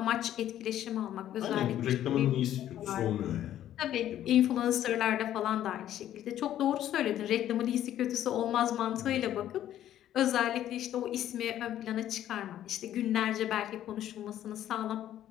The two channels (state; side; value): quieter; right; 11.8 dB